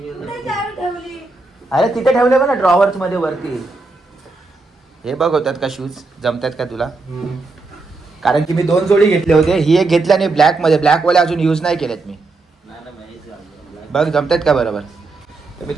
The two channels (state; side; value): quieter; left; 3.6 dB